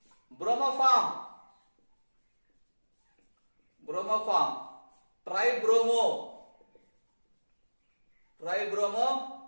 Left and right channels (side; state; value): both; inverted; correlation -1.00